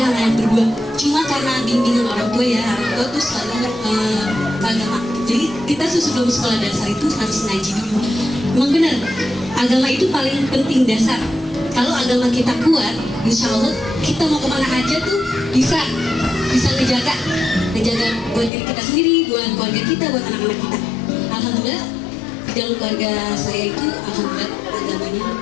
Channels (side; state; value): right; drops out; at 18.5 s